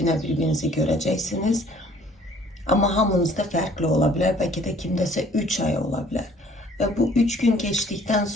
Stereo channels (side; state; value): both; normal; correlation 0.56